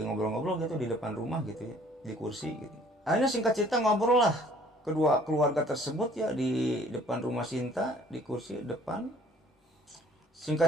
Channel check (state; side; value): normal; both; correlation 0.56